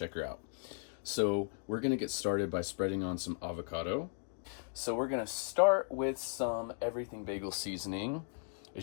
her out. So we're gonna get started by spreading on some avocado. So we're gonna start with some everything bagel seasoning.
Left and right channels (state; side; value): silent; right; 53 dB below the other